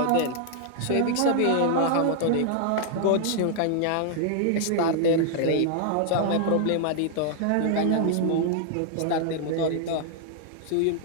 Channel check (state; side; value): different; both; correlation -0.01